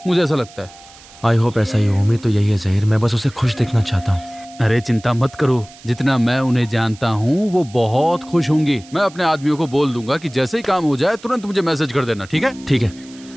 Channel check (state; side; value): noise; right; hiss, 22 dB below the sound